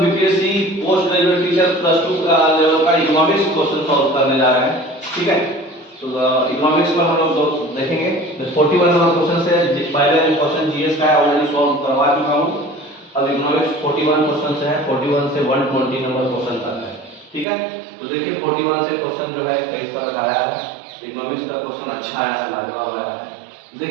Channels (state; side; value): drops out; left; at 17.4 s